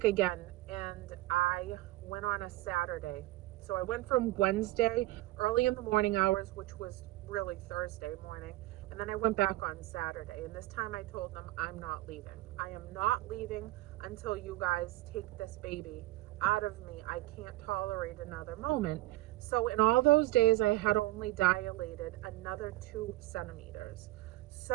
again. And I went on a Saturday. So I went from Wednesday, early in the morning hours, which was really Thursday morning, and then I went back on Saturday. And this time I told them, I'm not leaving. I am not leaving. until you guys take this baby out of me. I can't tolerate another moment. So in all those days, I had only dilated another 2 centimeters.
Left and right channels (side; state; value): left; quieter; 18.3 dB